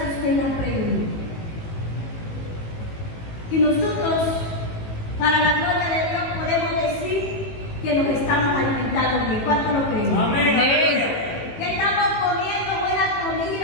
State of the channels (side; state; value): right; late; 18 ms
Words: usted la pregunta. Y nosotros, para la gloria de Dios, podemos decir que nos estamos alimentando bien. ¿Cuánto lo creen? Amén. Aleluya. Que estamos comiendo buena